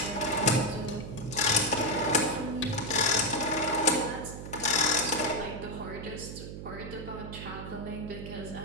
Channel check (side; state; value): right; noise; hum, 9 dB below the sound